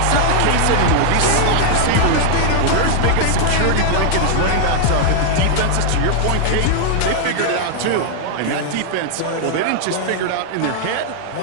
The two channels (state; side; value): different; both; correlation -0.01